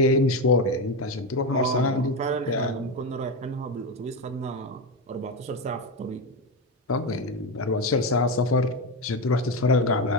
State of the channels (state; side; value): normal; both; correlation 0.13